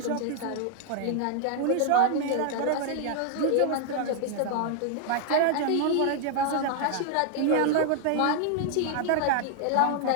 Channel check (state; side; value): different; both; correlation 0.00